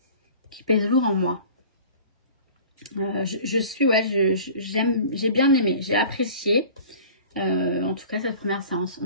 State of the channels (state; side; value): inverted; both; correlation -0.44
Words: Qui pèsent lourd en moi. J'ai bien aimé, j'ai apprécié. En tout cas, cette première séance,